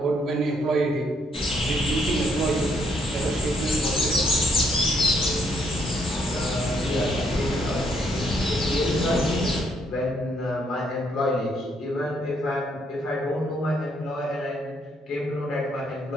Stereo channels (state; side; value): normal; both; correlation 0.71